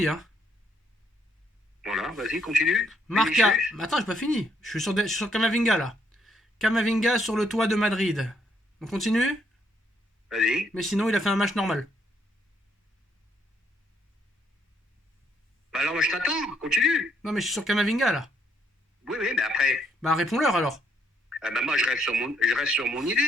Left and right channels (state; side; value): normal; both; correlation 0.71